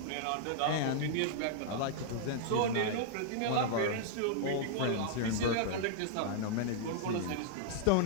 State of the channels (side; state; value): both; different; correlation -0.01